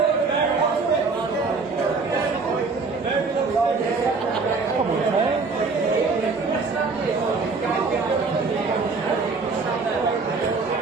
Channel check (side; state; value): left; quieter; 4.3 dB